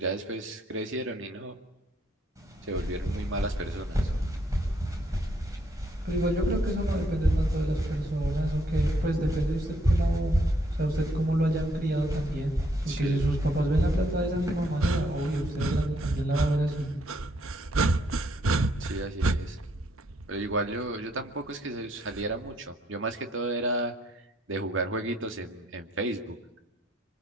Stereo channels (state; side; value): normal; both; correlation 0.71